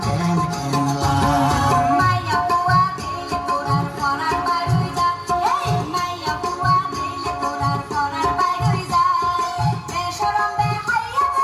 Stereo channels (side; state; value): both; identical; correlation 1.00